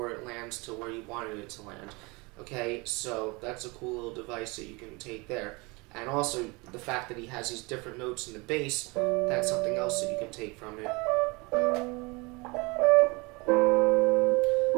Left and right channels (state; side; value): quieter; left; 26.6 dB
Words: it lands to where you wanted it to land. Okay, so that's a cool little device that you can take there. And also, the fact that he has these different notes in the bass, that's something else that you can take from it.